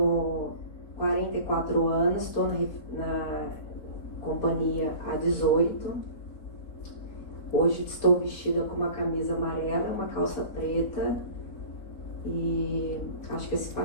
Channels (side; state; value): right; late; 4.6 ms